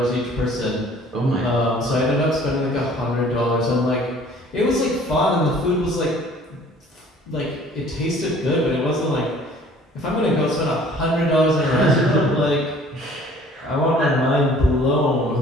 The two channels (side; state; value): both; normal; correlation 0.53